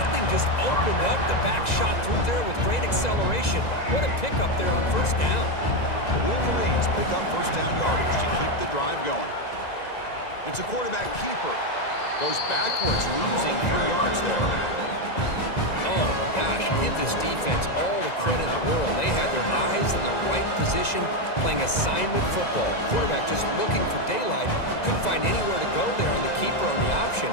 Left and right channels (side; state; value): right; late; 2.0 ms